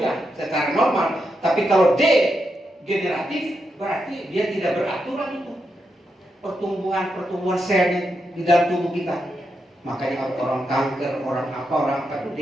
secara normal. Tapi kalau degeneratif berarti dia tidak beraturan itu pertumbuhan sel di dalam tubuh kita. Makanya orang kanker, orang apa itu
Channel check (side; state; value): both; normal; correlation 0.84